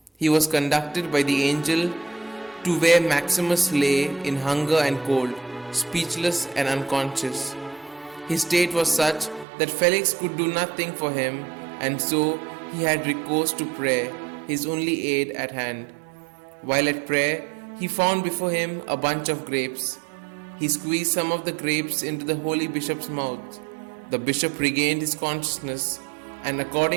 He was conducted by the angel to where Maximus lay in hunger and cold, speechless and unconscious. His state was such that Felix could do nothing for him, and so he had recourse to prayer, his only aid at hand. While at prayer, he found before him a bunch of grapes. He squeezed some of the grapes into the holy bishop's mouth. The bishop regained his consciousness, and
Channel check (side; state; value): left; drops out; at 9.5 s